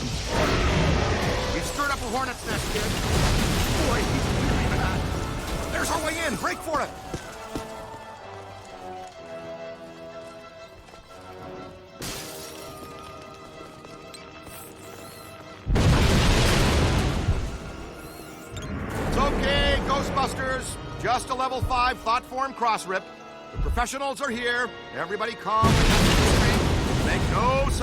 A hornet's nest, kid. Boy, he's really hot. There's our way in. Break for it. It's okay, Ghostbusters. Just a level 5 thought form cross rip. The professionals are here. Everybody calm and make no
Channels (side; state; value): both; identical; correlation 1.00